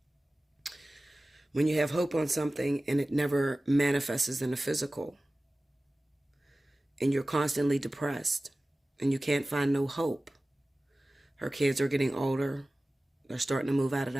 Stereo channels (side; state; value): both; normal; correlation 0.97